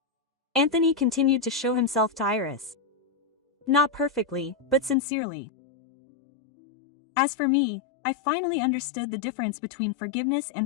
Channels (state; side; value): drops out; right; at 5.0 s